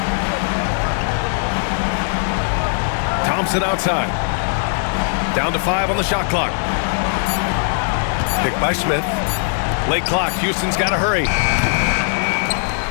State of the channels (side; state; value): right; silent; 65 dB below the other